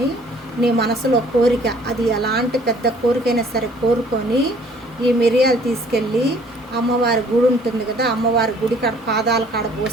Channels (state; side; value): normal; both; correlation 0.57